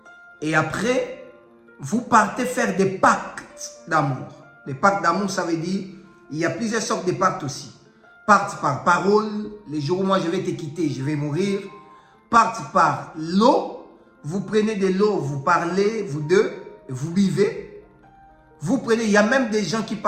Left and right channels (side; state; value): both; identical; correlation 1.00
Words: Et après, vous partez faire des pactes d'amour. Les pactes d'amour, ça veut dire, il y a plusieurs sortes de pactes aussi. Pacte par parole, les jours où moi je vais te quitter, je vais mourir. Pacte par l'eau, vous prenez de l'eau, vous parlez, vous deux, vous buvez. Vous prenez, il y a même des gens qui